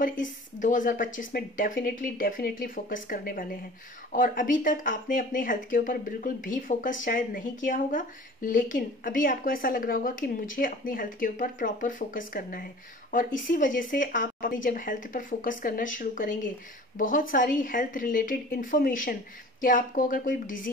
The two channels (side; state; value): both; normal; correlation 0.44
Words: इस 2025 में डेफिनेटली फोकस करने वाले हैं। और अभी तक आपने अपने हेल्थ के ऊपर बिल्कुल भी फोकस शायद नहीं किया होगा, लेकिन अभी आपको ऐसा लग रहा होगा कि मुझे अपनी हेल्थ के ऊपर प्रॉपर फोकस करना है। और इसी वजह से आप अपनी जब हेल्थ पर फोकस करना शुरू करेंगे, बहुत सारी हेल्थ रिलेटेड इन्फॉर्मेशन कि आपको अगर कोई